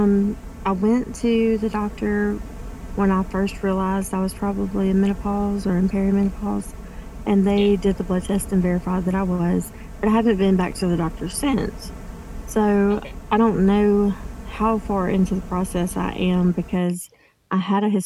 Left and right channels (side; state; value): both; identical; correlation 1.00